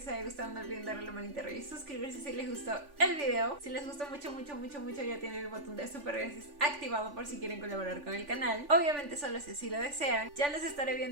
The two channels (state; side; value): late; left; 3.4 ms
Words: haya gustado. No olviden darle la manita arriba y suscribirse si les gustó el video. Si les gustó mucho, ya tienen el botón de super gracias activado por si quieren colaborar con el canal. Obviamente solo si así lo desean. Ya los estaré